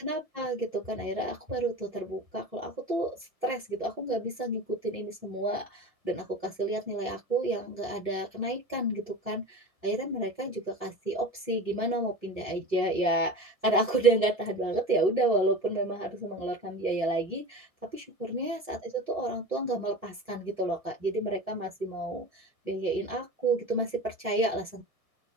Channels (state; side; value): late; right; 1.6 ms